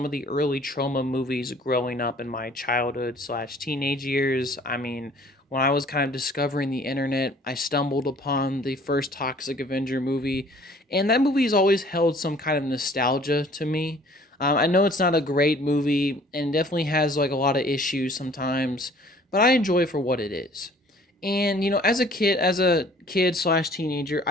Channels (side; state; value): both; normal; correlation 0.54